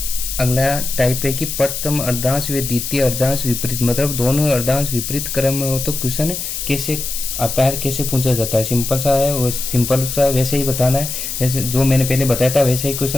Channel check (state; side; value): noise; left; hiss, 5 dB below the sound